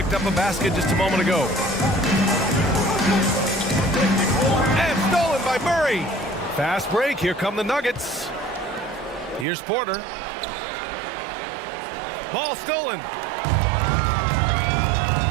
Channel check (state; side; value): drops out; left; at 9.5 s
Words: up a basket just a moment ago. And stolen by Murray. Fast break. Here come the Nuggets. Here's Porter. Ball stolen.